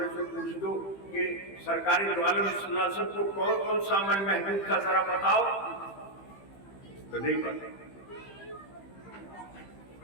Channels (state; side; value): late; right; 15 ms